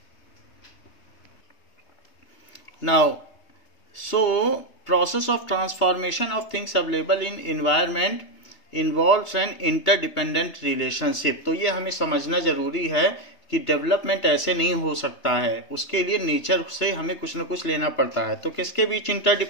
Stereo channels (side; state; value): right; late; 3.2 ms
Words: Now so process of transformation of things available in environment involves an interdependent relationship। तो ये हमें समझना जरूरी है कि डेवलपमेंट ऐसे नहीं हो सकता है, उसके लिए नेचर से हमें कुछ न कुछ लेना पड़ता है। तो किसके बीच